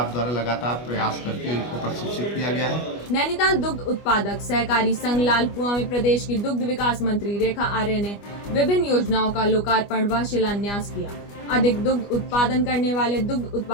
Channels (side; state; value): right; late; 25 ms